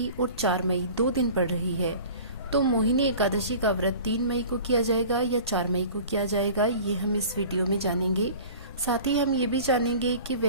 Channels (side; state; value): both; inverted; correlation -0.42